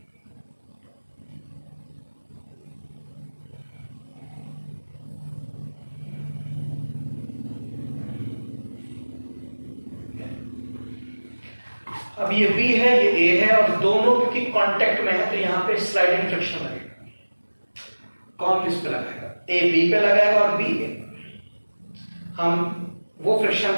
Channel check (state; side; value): inverted; both; correlation -1.00